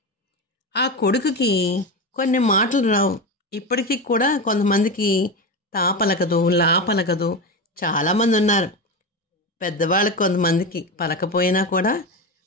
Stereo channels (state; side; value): normal; both; correlation 0.19